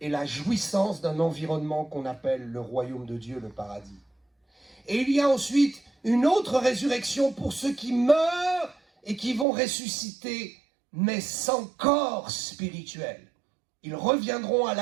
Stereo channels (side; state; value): left; drops out; at 9.5 s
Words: la jouissance d'un environnement qu'on appelle le royaume de Dieu, le paradis. Et il y a ensuite une autre résurrection pour ceux qui meurent et qui vont ressusciter, mais sans corps spirituel. Ils reviendront à